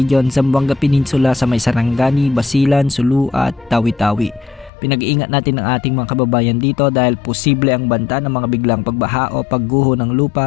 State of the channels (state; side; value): drops out; right; at 4.7 s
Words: Zamboanga Peninsula, sa may Sarangani, Basilan, Sulu at Tawi-Tawi. Pinag-iingat natin ang ating mga kababayan dito dahil posible ang banta ng mga biglang pagbaha o pagguho ng